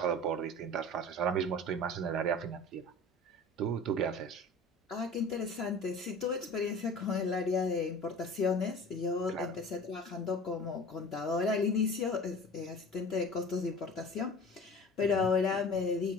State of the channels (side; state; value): both; normal; correlation 0.40